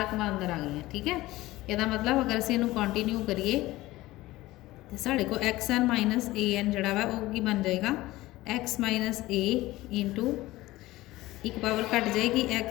रकम अंदर आ गई हैं। ठीक है, यदा मतलब अगर असीं इहनूं कंटिन्यू करिए तो साढ़े को x n minus a n जोड़ा वा वो की बन जाएगा एक्स माइनस ए इंटू एक पावर घट जाएगी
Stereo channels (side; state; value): right; quieter; 17.9 dB